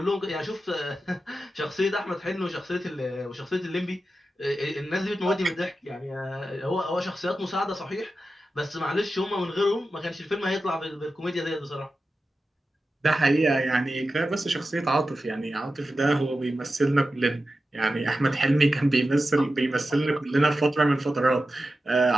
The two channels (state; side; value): normal; both; correlation 0.92